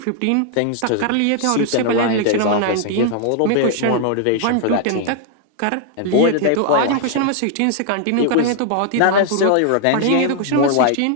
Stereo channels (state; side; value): different; both; correlation 0.00